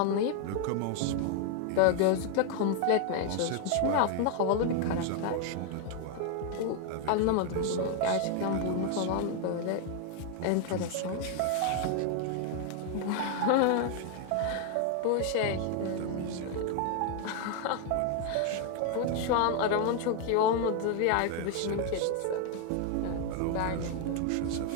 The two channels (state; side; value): different; both; correlation 0.01